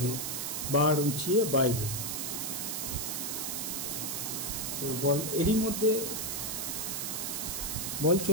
বার উঁচিয়ে বাইরে। বল এরই মধ্যে বল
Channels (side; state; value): right; noise; hiss, 2 dB below the sound